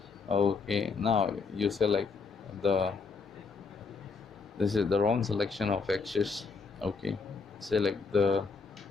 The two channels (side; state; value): right; quieter; 4.8 dB